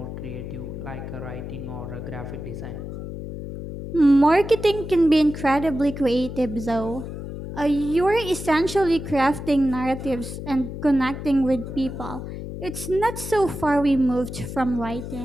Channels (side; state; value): left; noise; hum, 8 dB below the sound